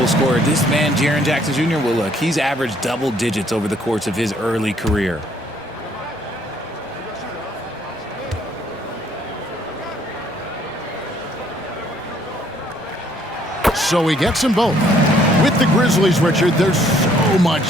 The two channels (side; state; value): both; normal; correlation 0.64